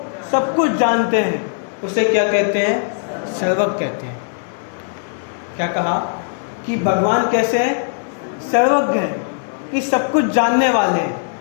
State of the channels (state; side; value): silent; right; digital silence